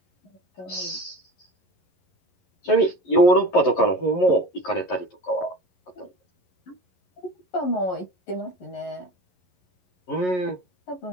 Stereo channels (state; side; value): late; right; 11 ms